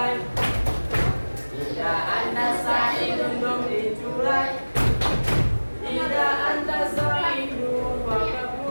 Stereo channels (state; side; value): inverted; both; correlation -1.00